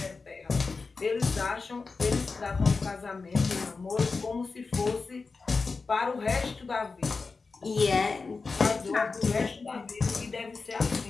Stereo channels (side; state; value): right; quieter; 4.3 dB